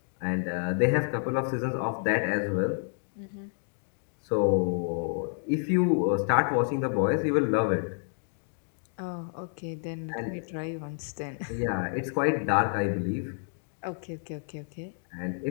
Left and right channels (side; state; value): right; silent; 58 dB below the other